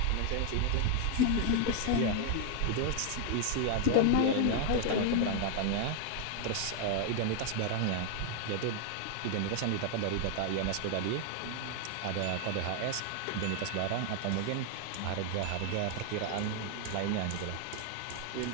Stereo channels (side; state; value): both; different; correlation 0.00